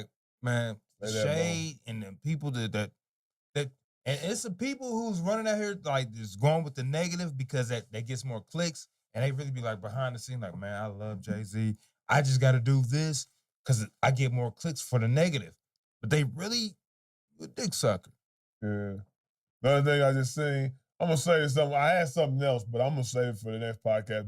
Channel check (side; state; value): both; identical; correlation 1.00